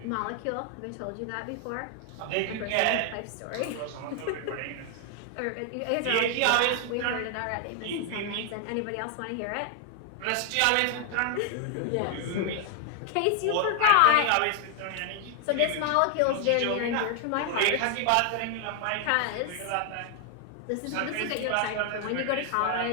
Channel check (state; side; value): different; both; correlation 0.00